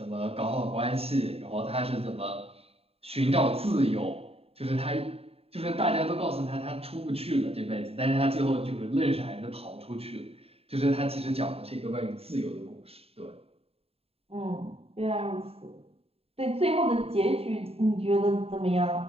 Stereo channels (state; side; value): late; left; 0.29 ms